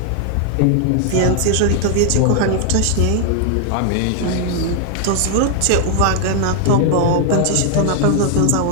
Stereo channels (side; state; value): both; different; correlation 0.00